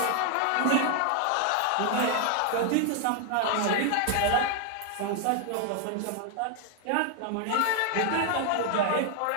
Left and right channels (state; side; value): different; both; correlation 0.01